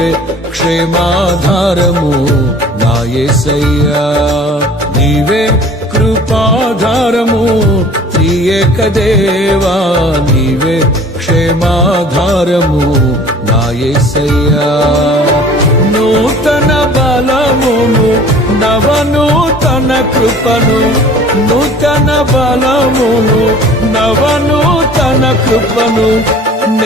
క్షేమాధారము నా యేసయ్యా. నీవే కృపాధారము త్రియేక దేవా, నీవే క్షేమాధారము నా యేసయ్యా. నూతన బలమును నవనూతన కృపను, నూతన బలమును నవనూతన కృపను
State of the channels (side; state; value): both; normal; correlation 0.47